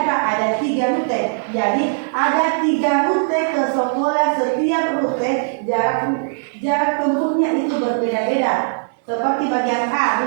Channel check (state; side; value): silent; left; digital silence